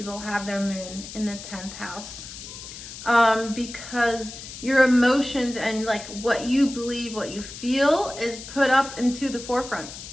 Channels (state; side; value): noise; left; hiss, 12 dB below the sound